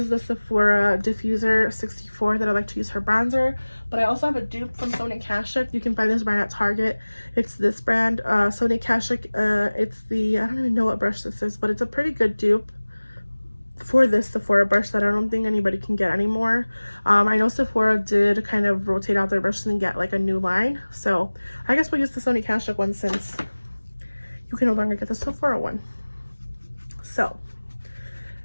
the Sephora Diffuser 64 that I like to use for bronzer. But I also have a dupe from Sonia Kashuk. You can find this brand at Target. It's this brand, Sonia Kashuk. It's the, I don't even know what brush this is, but it's a pretty good dupe for this Sephora brush that I don't think anybody can get anymore. I know Sephora did kind of rotate out their brushes and get like a new line. So I guess we'll use the Sonia Kashuk one since you can no longer get the Sephora one. So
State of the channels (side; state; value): both; inverted; correlation -1.00